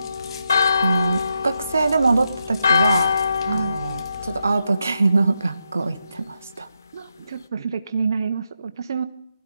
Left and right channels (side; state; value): both; inverted; correlation -0.83